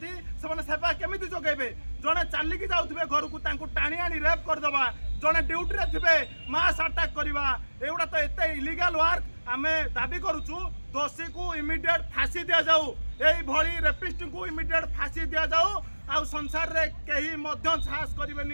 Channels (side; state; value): both; inverted; correlation -1.00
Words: से माने सेवा केमिति जोगेबे जने चाली की जाउथबे घर को तांको टाणी आनी रेप कर दबा जने ड्यूटी रे थिबे मास अटैक करबा एउडा तो एते इलीगल वर्क आमे दाबी करूछु दोषी को इमीडिएट फांसी दिया जाऊ एई भली रेपिस्ट को इमीडिएट फांसी दिया जाऊ आ संसार रे केही मध्य साहस